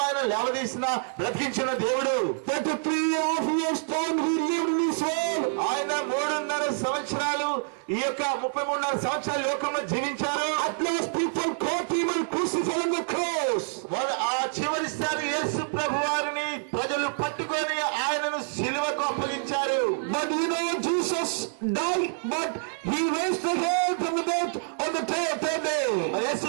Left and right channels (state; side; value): silent; left; digital silence